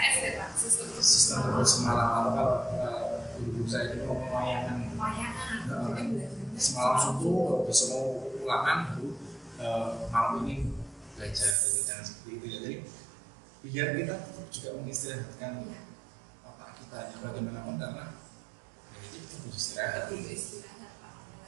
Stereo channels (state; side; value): drops out; left; at 11.6 s